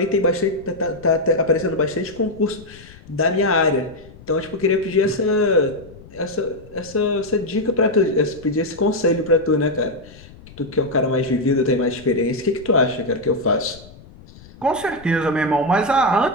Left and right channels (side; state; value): left; noise; rumble, 21 dB below the sound